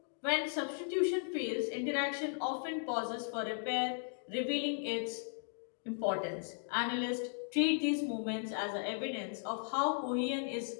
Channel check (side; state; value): right; silent; 53 dB below the other